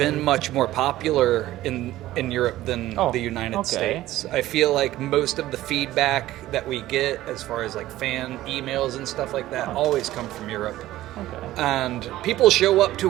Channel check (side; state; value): left; quieter; 15.3 dB